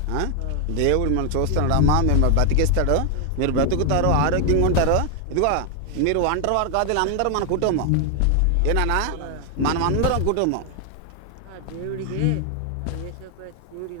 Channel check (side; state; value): both; different; correlation 0.00